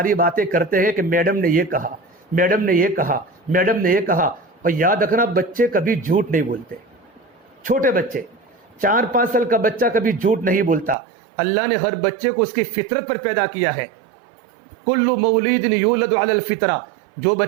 باتیں کرتے ہیں کہ میڈم نے یہ کہا، میڈم نے یہ کہا، میڈم نے یہ کہا۔ اور یاد رکھنا بچے کبھی جھوٹ نہیں بولتے، چھوٹے بچے 4-5 سال کا بچہ کبھی جھوٹ نہیں بولتا۔ اللہ نے ہر بچے کو اس کی فطرت پر پیدا کیا ہے۔ کل مولود یولد علی الفطرہ، جو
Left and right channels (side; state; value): left; drops out; at 11.0 s